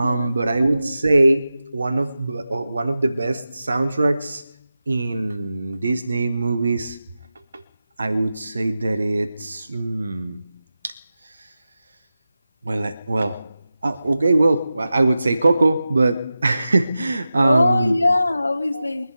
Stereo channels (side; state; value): both; inverted; correlation -0.93